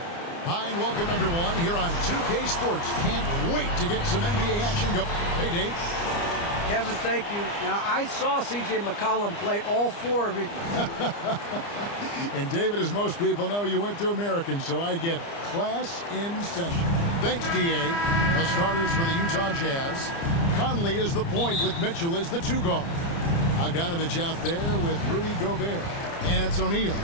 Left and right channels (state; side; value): late; right; 29 ms